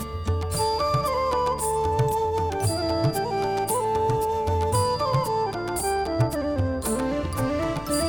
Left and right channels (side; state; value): left; noise; hum, 19 dB below the sound